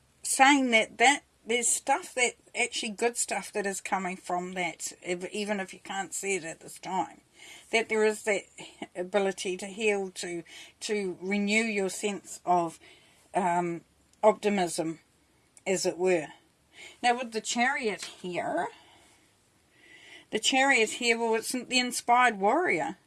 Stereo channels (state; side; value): identical; both; correlation 1.00